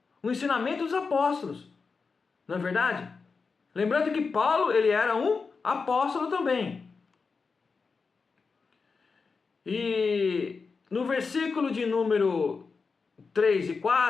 O ensinamento dos apóstolos. Não é verdade? Lembrando que Paulo, ele era um apóstolo também. E no versículo de número 3 e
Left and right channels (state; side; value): quieter; right; 4.8 dB